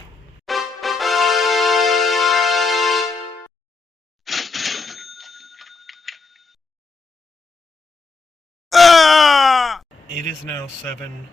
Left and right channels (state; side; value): quieter; right; 4.0 dB